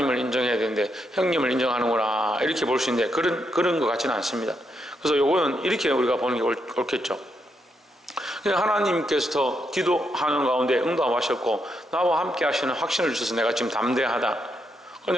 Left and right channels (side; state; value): both; normal; correlation 0.80